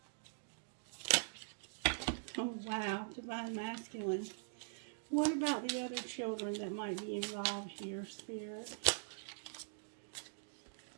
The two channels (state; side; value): silent; left; digital silence